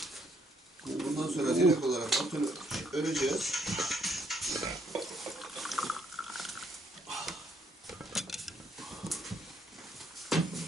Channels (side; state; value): both; normal; correlation 0.70